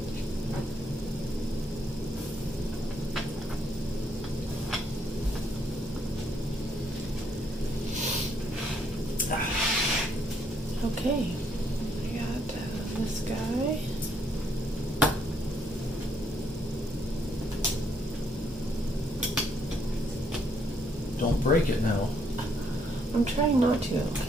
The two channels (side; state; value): both; normal; correlation 0.71